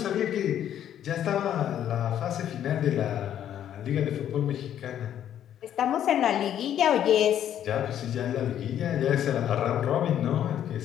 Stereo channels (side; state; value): right; quieter; 10.5 dB